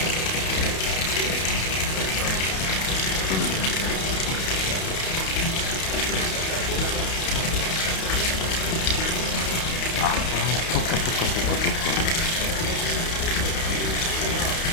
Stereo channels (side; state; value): right; late; 31 ms